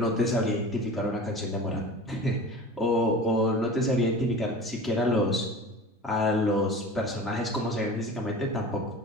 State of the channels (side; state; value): both; normal; correlation 0.36